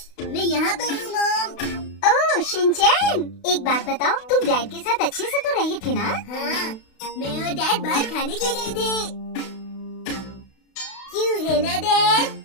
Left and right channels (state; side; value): late; right; 32 ms